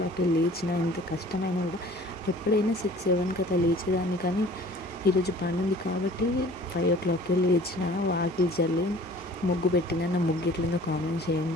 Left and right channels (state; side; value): normal; both; correlation 0.49